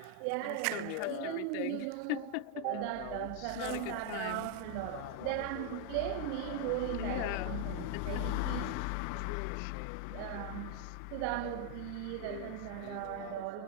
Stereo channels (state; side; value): different; both; correlation 0.00